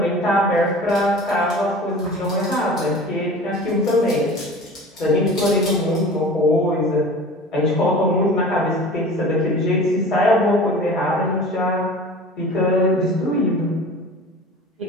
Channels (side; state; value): both; normal; correlation 0.39